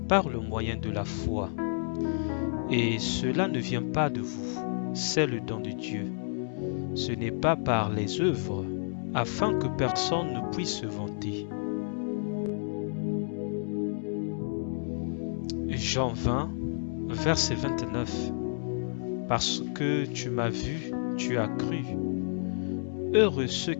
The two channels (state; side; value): silent; right; digital silence